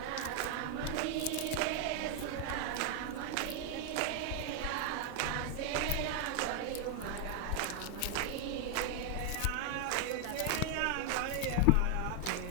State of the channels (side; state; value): both; different; correlation 0.01